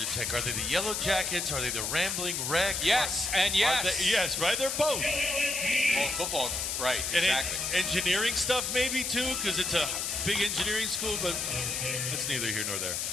Tech. Are they the Yellow Jackets? Are they the Rambling Wreck? Yes, and yes. Yes, right? They're both. Well, football, right, and exactly. Engineering stuff maybe too, because it's a big engineering school, but that's neither here nor there.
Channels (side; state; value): left; noise; hiss, 1 dB below the sound